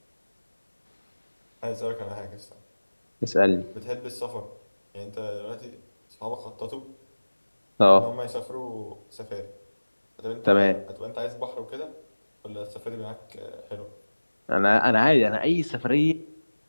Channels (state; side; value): inverted; both; correlation -1.00